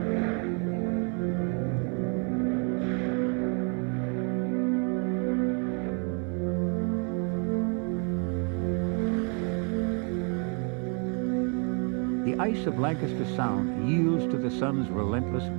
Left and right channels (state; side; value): quieter; left; 38.1 dB